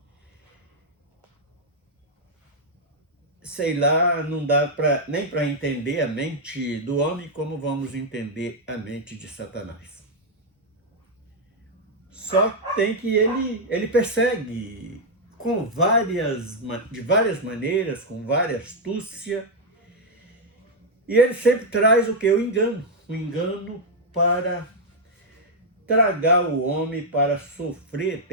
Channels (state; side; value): normal; both; correlation -0.02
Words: Sei lá, não dá nem para entender a mente do homem como vamos entender a mente de Satanás. Só tem que ele persegue de várias maneiras, com várias astúcia, e ele sempre traz o que? O engano para tragar o homem, para sofrer